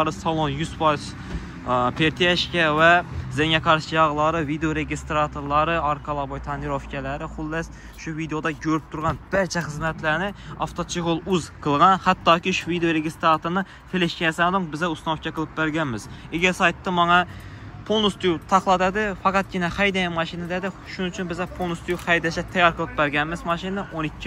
salon 100% pertiyashka va zenga qarshi yog'lari, video registratorlari, arka laboy tonirovkalari, xullas shu videoda ko'rib turgan barcha xizmatlarni avtochig'ol uz qilgan. Hattoki shu video registratorni fleshkasini biza uстановка qilib berganmiz. Ega saytda menga полностью taqladadi, faqatgina haydagan mashina dedi. Shuning uchun biza полностью haydashga tayyor qilib berganmiz mashinani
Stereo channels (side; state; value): both; identical; correlation 1.00